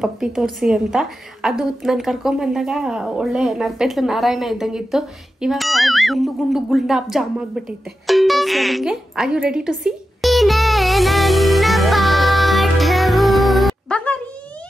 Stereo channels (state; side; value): normal; both; correlation 0.91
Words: ತೋರಿಸಿ ಅಂತ. ಅದು ನಾನು ಕರ್ಕೊಂಬಂದಾಗ ಒಳ್ಳೆ ನರ್ಪೆತ್ಲು ನಾರಾಯಣ ಇದ್ದಂಗಿತ್ತು. ಇವಾಗ ಗುಂಡು ಗುಂಡಾಪ್ ಜಾಮ್ ಆಗ್ಬಿಟ್ಟೈತೆ. Are you ready to see? ಬಂಗಾರಿ